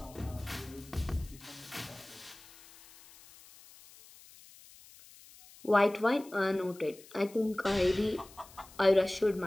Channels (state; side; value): noise; left; hiss, 22 dB below the sound